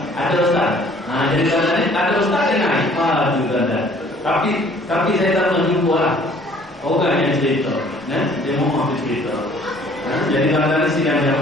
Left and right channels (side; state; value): both; normal; correlation 0.56